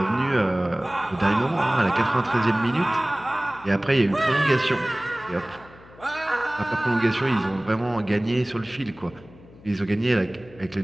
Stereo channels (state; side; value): noise; left; hum, 23 dB below the sound